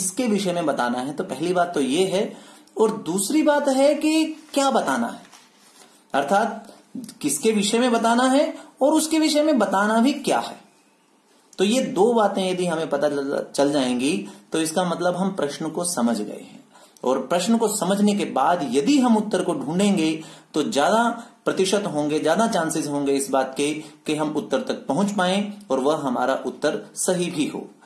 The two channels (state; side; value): identical; both; correlation 1.00